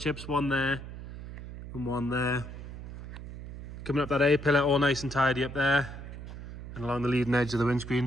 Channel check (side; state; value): right; noise; hum, 11 dB below the sound